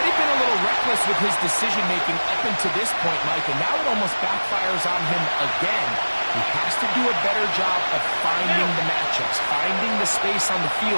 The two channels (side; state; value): both; inverted; correlation -1.00